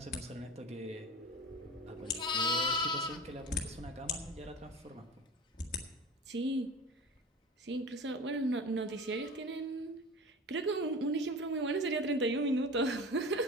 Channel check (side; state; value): both; normal; correlation 0.34